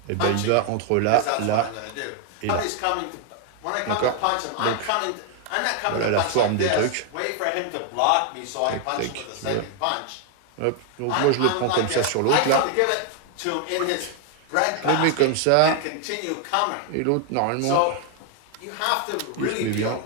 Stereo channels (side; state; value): both; different; correlation 0.00